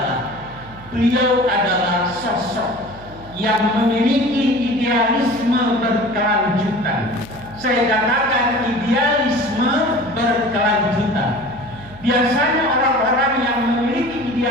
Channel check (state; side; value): noise; right; hum, 19 dB below the sound